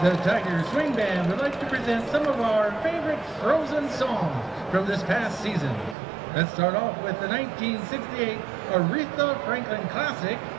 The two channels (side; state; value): left; drops out; at 6.0 s